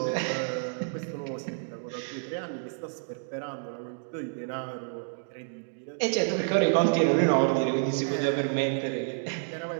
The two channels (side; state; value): left; silent; digital silence